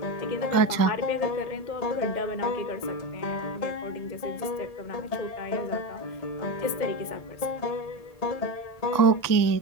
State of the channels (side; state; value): right; late; 2.0 ms